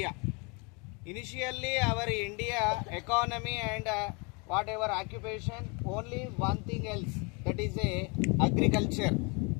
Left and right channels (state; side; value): quieter; right; 31.3 dB